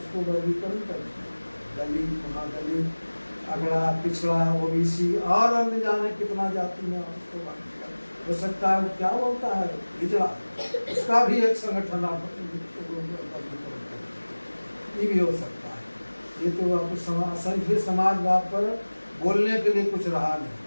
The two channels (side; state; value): both; inverted; correlation -1.00